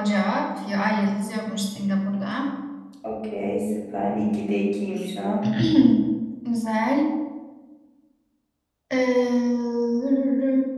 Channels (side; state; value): both; identical; correlation 1.00